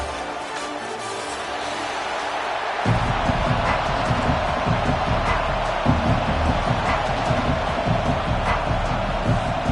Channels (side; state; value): both; identical; correlation 1.00